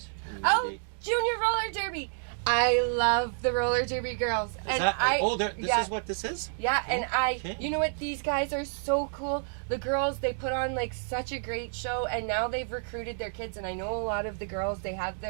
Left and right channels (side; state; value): left; silent; digital silence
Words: Oh, Junior Roller Derby. I love the roller derby girls. This is what this is? Yeah, and Okay. you know what? These guys are so cool. the girls, they put on like such a great show, and now they've recruited their kids, and I know a lot of the girls, they have